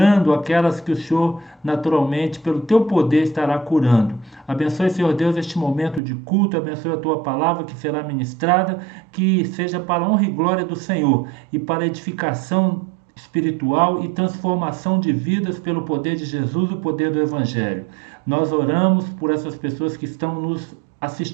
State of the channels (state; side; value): drops out; left; at 6.0 s